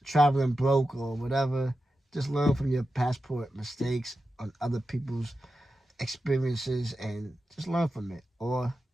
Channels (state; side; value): normal; both; correlation 0.91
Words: traveling broke or whatever, just learn from your passport mistakes on other people's experiences and just learn from it. Or